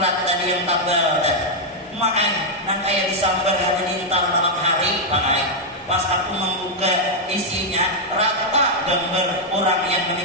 tadi yang tabel nang kayak disambar halilintar malam hari pas aku membuka isinya rata gambar orang yang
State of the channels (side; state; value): both; normal; correlation -0.02